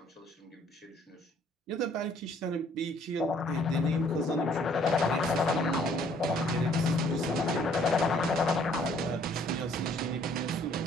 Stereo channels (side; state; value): both; normal; correlation 0.61